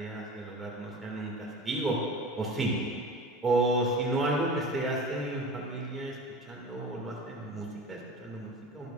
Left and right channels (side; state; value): both; normal; correlation 0.34